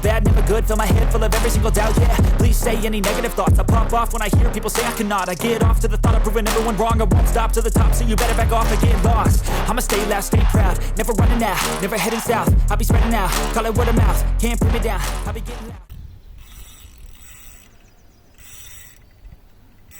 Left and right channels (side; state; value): both; identical; correlation 1.00